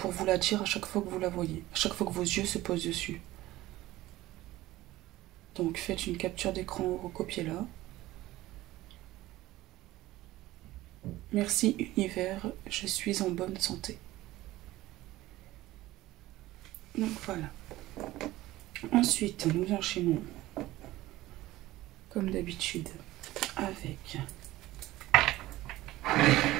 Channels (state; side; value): quieter; left; 17.1 dB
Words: vous la dire à chaque fois que vous la voyez, à chaque fois que vos yeux se posent dessus. Donc faites une capture d'écran ou recopiez-la. Merci univers, je suis en bonne santé. Donc voilà. Ensuite, nous enchaînons comme d'habitude avec